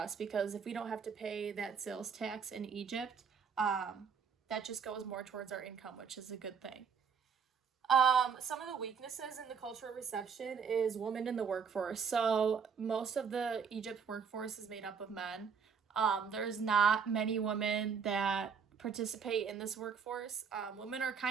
because if we don't have to pay that sales tax in Egypt, that just goes more towards our income, which is a good thing. Some of the weaknesses in the cultural reception is women in the workforce. So most of the Egypt workforce is made up of men. There's not many women that participate in this workforce. Women are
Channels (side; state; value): left; quieter; 6.4 dB